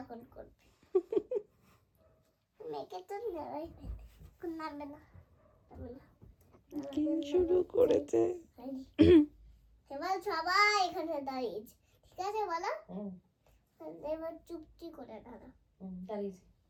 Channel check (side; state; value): both; identical; correlation 1.00